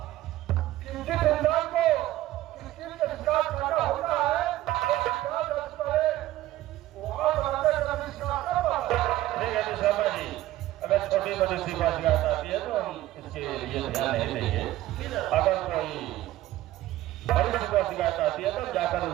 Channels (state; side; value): quieter; left; 15.3 dB